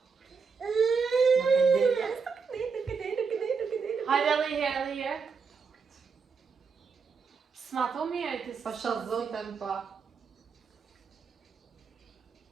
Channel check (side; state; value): left; quieter; 5.4 dB